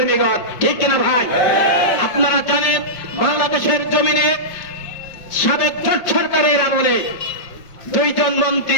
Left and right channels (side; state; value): right; late; 5.6 ms